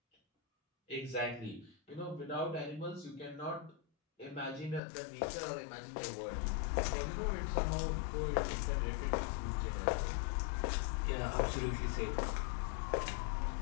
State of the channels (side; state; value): right; drops out; at 4.8 s